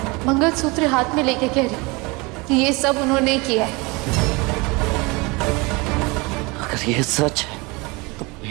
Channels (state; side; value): quieter; left; 26.2 dB